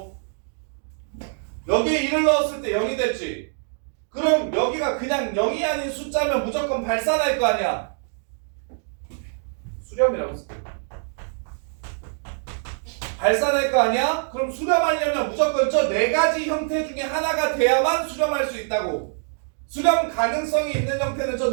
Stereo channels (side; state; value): left; silent; digital silence